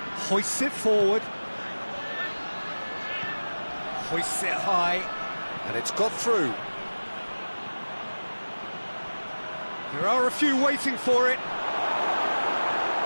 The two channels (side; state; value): both; inverted; correlation -1.00